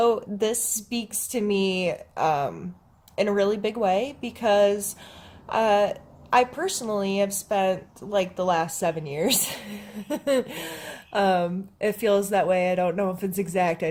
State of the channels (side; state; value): both; identical; correlation 1.00